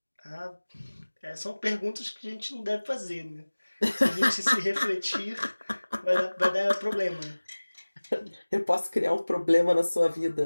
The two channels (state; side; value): inverted; both; correlation -1.00